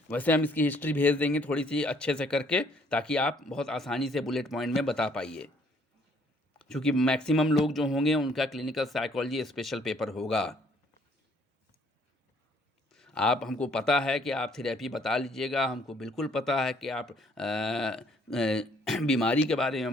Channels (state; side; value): normal; both; correlation 0.64